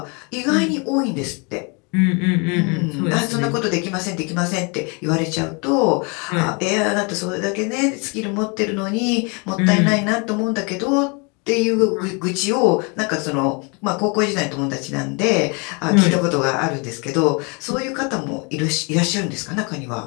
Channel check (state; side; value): quieter; right; 32.2 dB